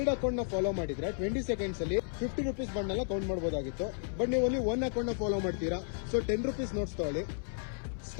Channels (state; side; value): silent; right; 56 dB below the other